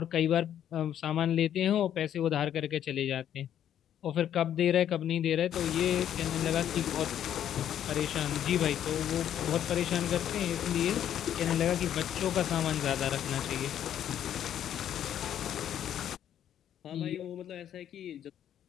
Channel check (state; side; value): quieter; right; 10.3 dB